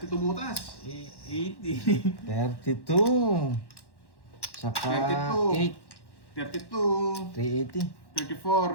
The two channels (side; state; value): right; late; 1.1 ms